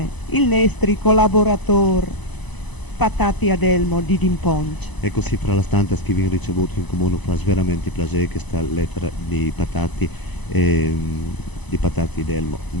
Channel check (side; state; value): right; late; 1.0 ms